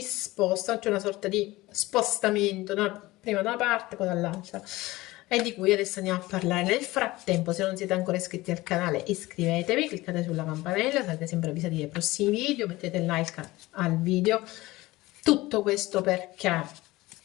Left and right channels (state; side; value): quieter; right; 19.3 dB